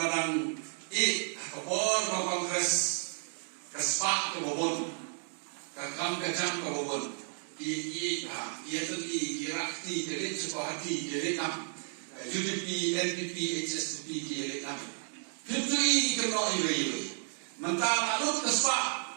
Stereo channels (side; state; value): left; silent; 56 dB below the other